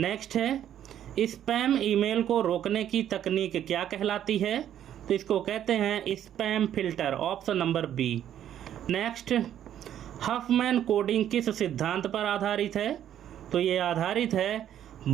है स्पैम ईमेल को रोकने की तकनीक क्या कहलाती है? तो इसको कहते हैं spam filter, option number B. Next, Huffman coding किस सिद्धांत पर आधारित है? तो ये आधारित है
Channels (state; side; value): quieter; left; 10.6 dB